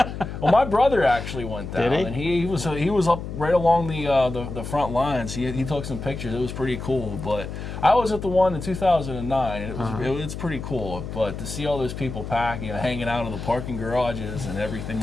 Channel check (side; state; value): left; noise; hum, 8 dB below the sound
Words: Well, my brother actually went down, Did he? And he was up right along the front lines. He took some pictures. It was pretty cool. But I was at the one in 2009, and it's pretty cool. But to see all those people packing, hanging out in the parking garages and